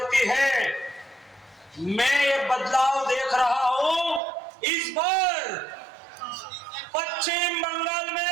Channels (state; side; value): drops out; left; at 4.2 s